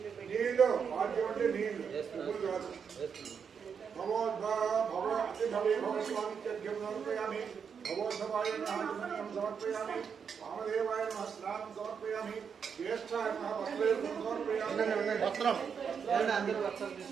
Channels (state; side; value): quieter; left; 6.7 dB